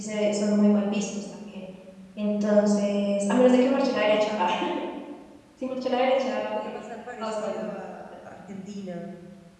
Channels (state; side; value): identical; both; correlation 1.00